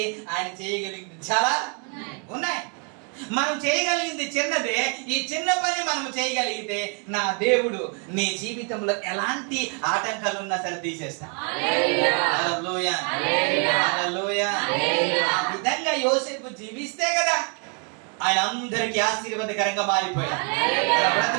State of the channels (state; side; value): quieter; left; 37.2 dB